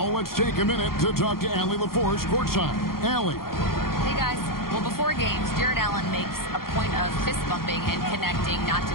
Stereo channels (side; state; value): right; late; 0.93 ms